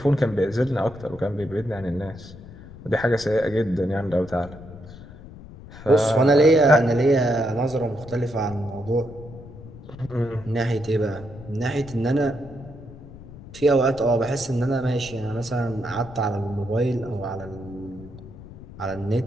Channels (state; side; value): noise; left; rumble, 16 dB below the sound